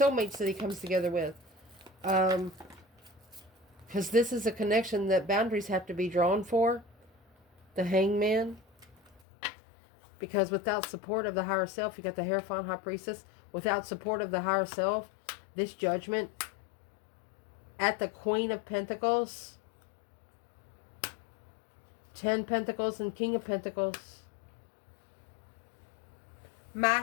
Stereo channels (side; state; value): right; drops out; at 9.2 s